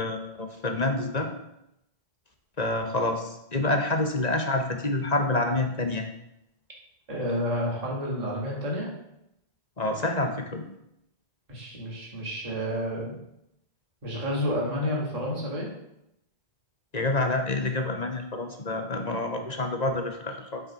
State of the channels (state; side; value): late; right; 1.9 ms